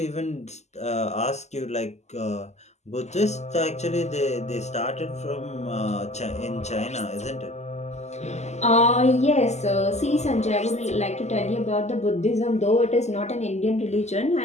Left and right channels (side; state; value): right; late; 0.33 ms